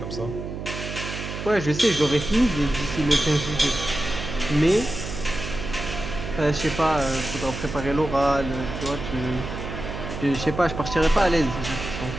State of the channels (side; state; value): right; noise; hum, 7 dB below the sound